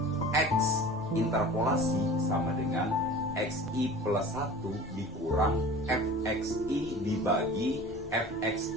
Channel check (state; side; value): normal; both; correlation 0.40